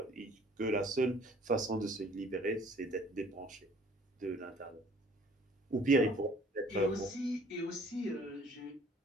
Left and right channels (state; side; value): normal; both; correlation 0.55